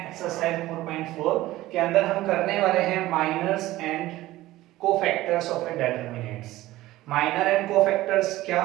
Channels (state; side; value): quieter; left; 16.7 dB